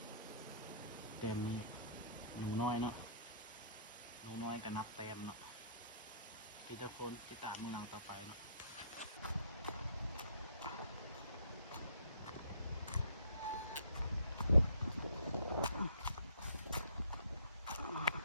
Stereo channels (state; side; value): inverted; both; correlation -0.57